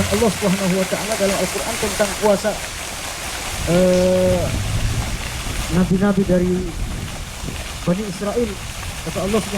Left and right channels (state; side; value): identical; both; correlation 1.00